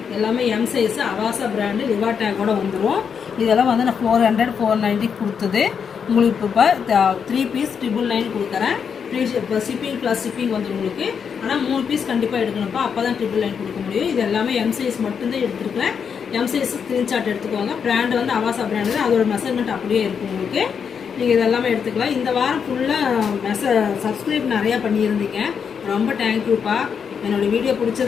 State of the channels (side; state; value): right; quieter; 6.8 dB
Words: எல்லாமே எம் சைஸு அவாசா பிராண்டு லிவா டேக்கோட வந்துடும். இதெல்லாம் வந்து நான் 400 490 கொடுத்தது. உங்களுக்கு இப்போ 3 பீஸ் 999 கொடுக்குறேன். இப்போ ஷிப்பிங் ப்ளஸ் ஷிப்பிங் வந்து உங்களுக்கு. ஆனால் 3 பீஸ் கண்டிப்பாக எடுக்கணும்ப்பா. அப்போ தான் 999 கொடுக்க முடியும். இது எல்லாமே எம் சைஸ் மட்டும்தான் எடுத்துருக்கேன். எம் சைஸ் ஸ்க்ரீன்ஷாட் எடுத்துக்கோங்க. பிராண்டு வந்து அவாசா பிராண்டு, அதோட மெஷர்மெண்ட் அப்படியே இருக்கும் உங்களுக்கு. நீங்கள் இதெல்லாமே எடுத்துக்கலாம். இந்த வாரம் ஃபுல்லாக சப்ஸ்கிரைப் நிறையா பண்ணியிருந்தீங்க. ரொம்ப தேங்க்யூப்பா. என்னோடய வீடியோ